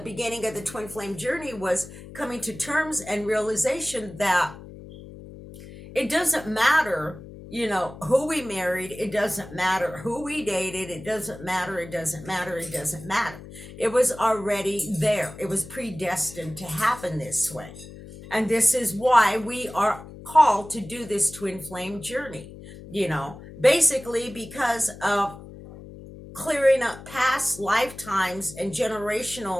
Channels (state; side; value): noise; left; hum, 15 dB below the sound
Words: beginning of the twin flame journey, was coming to terms and realization that it doesn't matter, who we married. It doesn't matter who we dated. It doesn't matter. It doesn't matter. It doesn't matter. It was already there. It was predestined to happen this way. And this is why we are called to do this twin flame journey, basically because of clearing up past lifetimes and